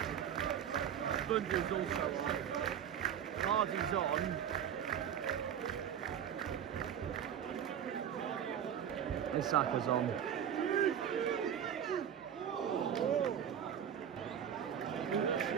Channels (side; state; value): left; quieter; 9.1 dB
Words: Bundy's also on. Hardy's on. Isaka's on.